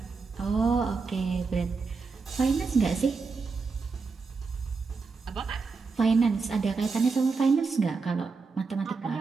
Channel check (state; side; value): quieter; left; 4.6 dB